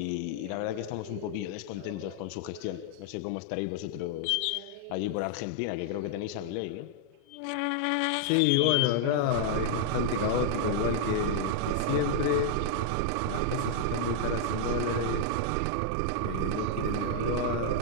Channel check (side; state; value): both; different; correlation 0.00